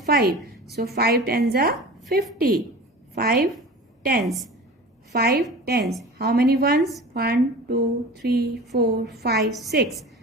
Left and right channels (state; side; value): normal; both; correlation 0.36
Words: So 5 tens are 50. 5 tens. 5 tens. How many ones? 1 2 3 4 5 6.